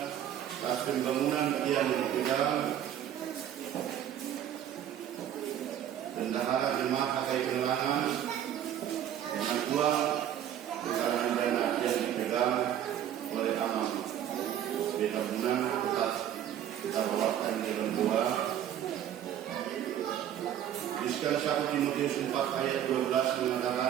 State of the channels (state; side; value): quieter; left; 10.6 dB